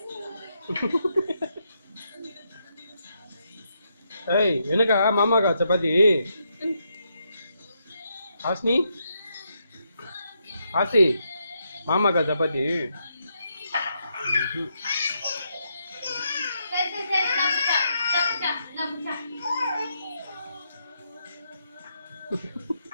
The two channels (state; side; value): inverted; both; correlation -0.79